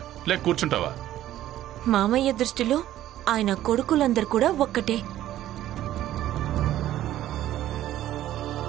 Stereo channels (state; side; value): quieter; left; 13.2 dB